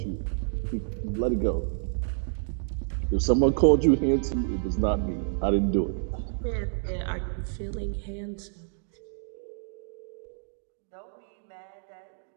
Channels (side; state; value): left; silent; digital silence